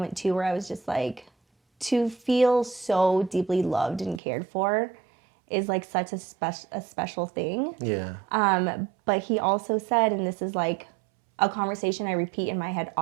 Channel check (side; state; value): left; drops out; at 4.2 s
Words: too where I was just like, to feel so deeply loved and cared for is like such a special thing. Yeah. But he also said, and this is like a conversation I repeat in my head